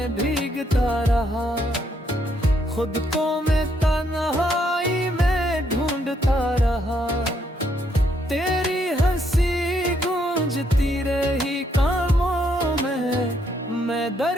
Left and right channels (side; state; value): both; normal; correlation 0.73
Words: भीगता रहा, खुद को मैं तन्हाई में ढूंढता रहा। तेरी हंसी गूंजती रही कानों में, मैं